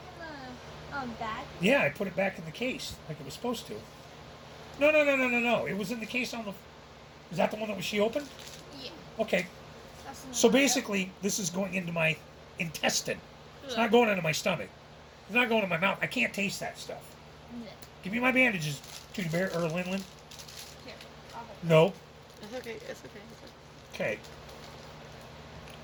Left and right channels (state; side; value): identical; both; correlation 1.00